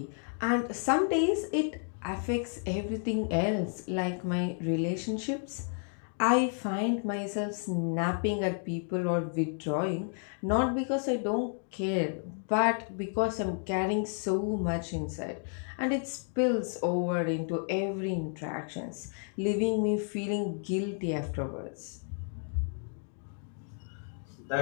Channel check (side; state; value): right; silent; 57 dB below the other